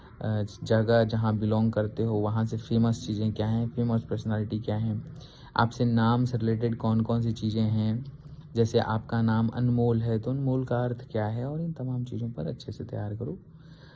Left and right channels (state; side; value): identical; both; correlation 1.00